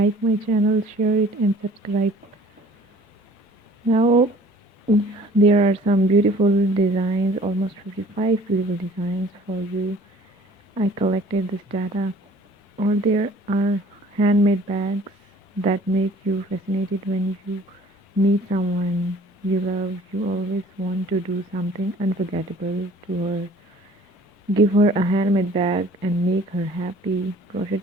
my channel, share it and subscribe. Now there are some beautiful designs, almost 55 beautiful designs for you. I collected this data. Or there are handmade bags that make you fascinated when you meet someone you love. You always want to do something unforgettable to her. Give her a handmade bag and make her happy. Crochet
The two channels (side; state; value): both; normal; correlation 0.51